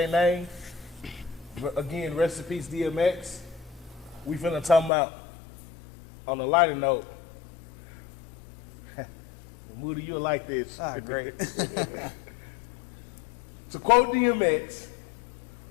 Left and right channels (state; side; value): drops out; right; at 4.9 s